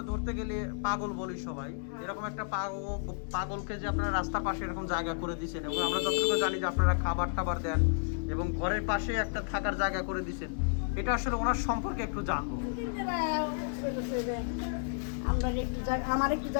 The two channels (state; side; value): silent; right; 56 dB below the other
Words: ধরতে গেলে পাগল বলি সবাই এরকম একটা পাগলকে যে আপনারা রাস্তার পাশে এরকম জায়গা করে দিয়েছেন এবং আমরা যতটুকু জানি যে আপনারা খাবার টাবার দেন এবং ঘরের পাশে একটা থাকার জায়গা করে দিয়েছেন এটা আসলে ওনার সম্পর্কে একটু জানবো আমরা একটু জায়গা, আমার একটু